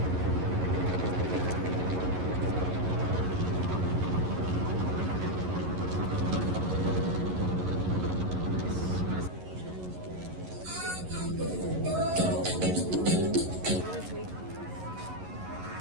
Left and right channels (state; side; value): late; left; 11 ms